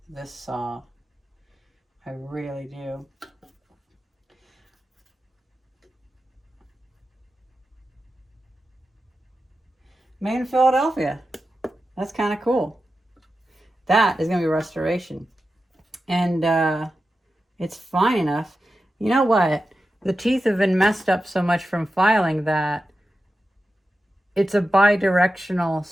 saw. I really do. Made in Philadelphia. That's kind of cool. That is going to be restoration. And it's fine enough. You know what? The teeth have been messed up so much from filing that it's a bi-directional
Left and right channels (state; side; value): normal; both; correlation 0.92